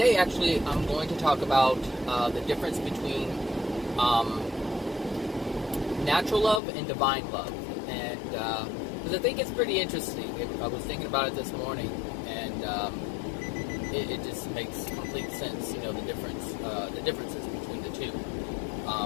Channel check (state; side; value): drops out; right; at 6.6 s